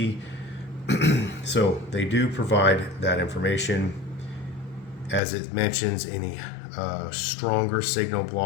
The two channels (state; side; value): drops out; right; at 5.2 s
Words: So they do provide that information. As it mentions, any stronger signal